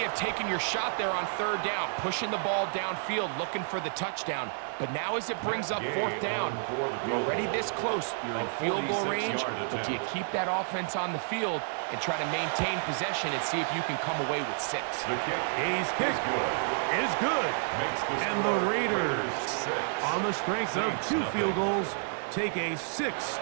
of taking your shot there on third down, pushing the ball downfield, looking for the touchdown. But now as it brings up fourth down, you're already this close. You're in field goal range, but do you keep that offense on the field and try to maintain possession and see if you can come away with 6? The kick Is good. And the Raiders, on the strength of 2 field goals, take a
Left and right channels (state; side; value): silent; left; digital silence